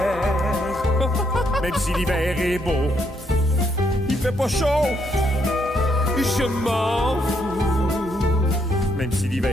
même si l'hiver est beau, il fait pas chaud, je m'en fous, même si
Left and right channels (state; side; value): normal; both; correlation 0.74